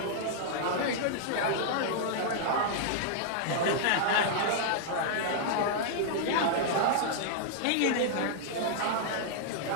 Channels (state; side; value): different; both; correlation -0.01